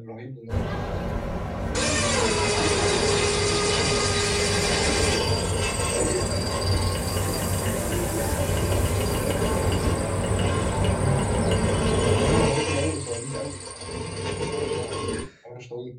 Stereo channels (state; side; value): identical; both; correlation 1.00